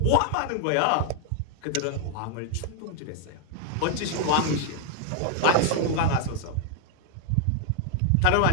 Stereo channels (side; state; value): both; different; correlation 0.00